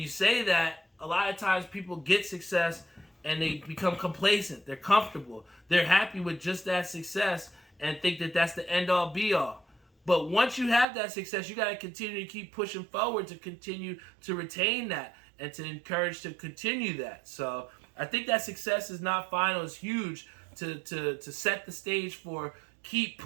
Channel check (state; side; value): drops out; left; at 10.9 s